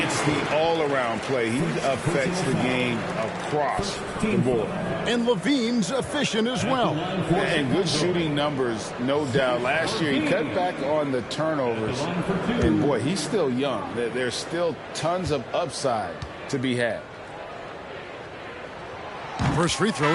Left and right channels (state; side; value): identical; both; correlation 1.00